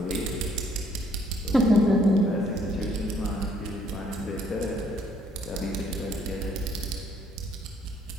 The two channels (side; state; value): both; normal; correlation 0.64